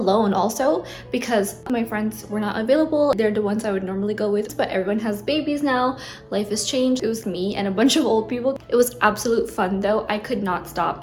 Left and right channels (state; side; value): identical; both; correlation 1.00